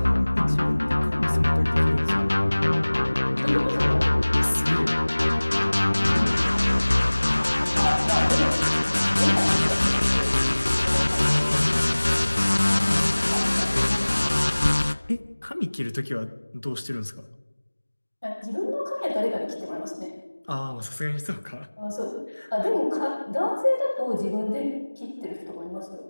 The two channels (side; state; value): both; inverted; correlation -1.00